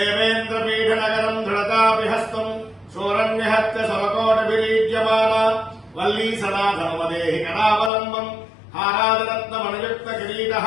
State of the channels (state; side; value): drops out; right; at 7.9 s